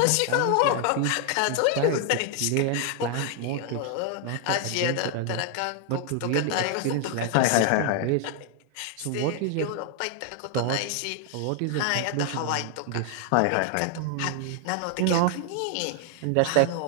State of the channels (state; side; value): different; both; correlation 0.00